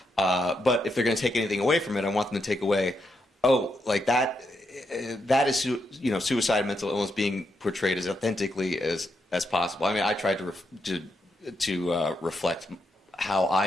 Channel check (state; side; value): normal; both; correlation 0.82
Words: But if they're going to take anything away from it, I want them to take away, that is suicide and mental illness being portrayed as authentically as possible. I mean, I tried to reflect how